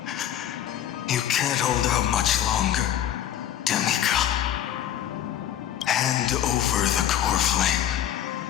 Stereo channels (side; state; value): right; quieter; 11.1 dB